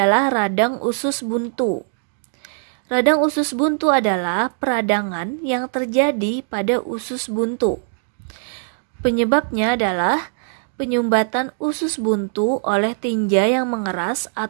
radang usus buntu. Radang usus buntu adalah peradangan yang terjadi pada usus buntu. Penyebabnya adalah penyumbatan usus buntu oleh tinja yang mengeras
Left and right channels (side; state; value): left; silent; digital silence